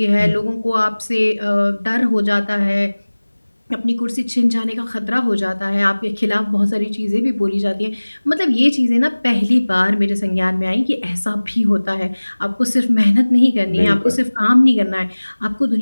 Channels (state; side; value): inverted; both; correlation -1.00